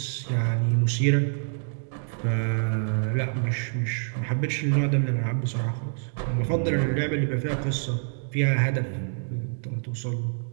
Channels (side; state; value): left; silent; digital silence